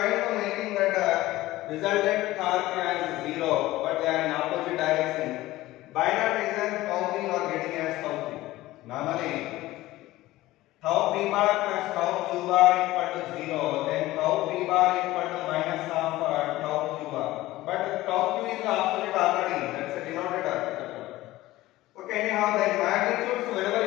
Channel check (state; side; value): quieter; right; 17.2 dB